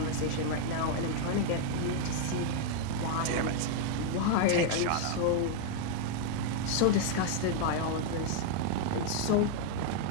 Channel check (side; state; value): both; different; correlation 0.00